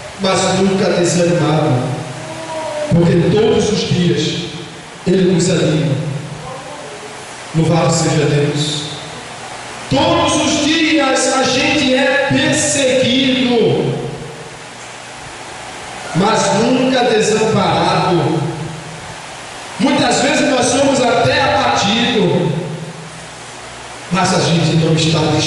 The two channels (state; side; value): identical; both; correlation 1.00